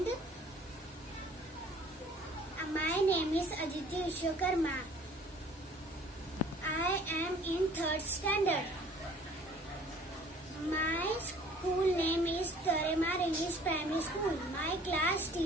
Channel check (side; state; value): both; normal; correlation 0.53